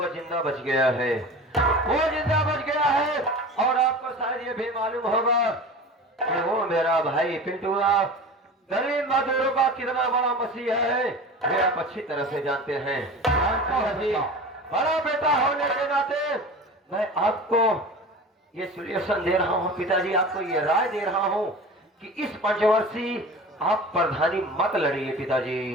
जिंदा बच गया है। वो जिंदा बच गया है और आपको शायद ये भी मालूम होगा कि वो मेरा भाई पिंटुआ गरीब मजदूरों का कितना बड़ा मसीहा है, ये आप अच्छी तरह से जानते हैं। जी, बड़ा बेटा होने के नाते मैं आपको ये सॉल्यूशन दे रहा हूँ पिताजी, आपको ये राय दे रहा हूँ कि इस पंचवर्षी आप प्रधानी मत लड़िए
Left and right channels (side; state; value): both; normal; correlation 0.35